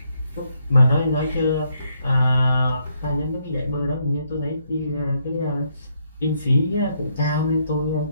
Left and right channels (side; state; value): both; inverted; correlation -0.75